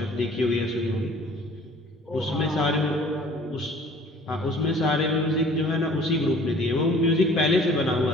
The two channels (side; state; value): both; normal; correlation 0.51